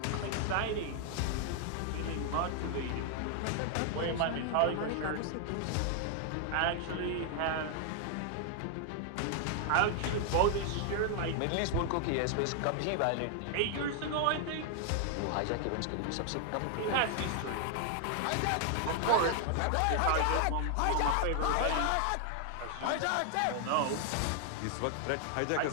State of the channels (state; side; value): different; both; correlation 0.00